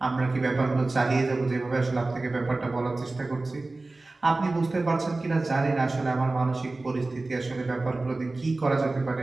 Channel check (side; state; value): left; quieter; 3.2 dB